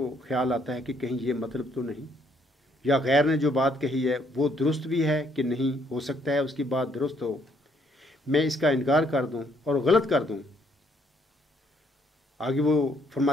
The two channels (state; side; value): normal; both; correlation 0.68